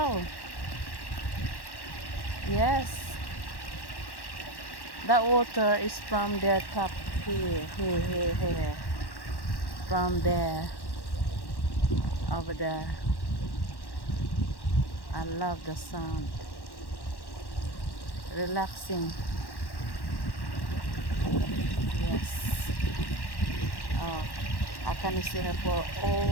Yes, that water is from the top here, from there, over there. I love the sound, relaxing. Yes. Oh, I can see her for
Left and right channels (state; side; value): late; right; 1.1 ms